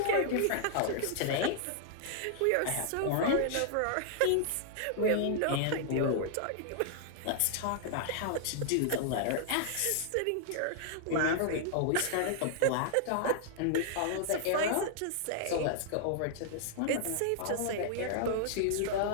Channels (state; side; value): different; both; correlation -0.01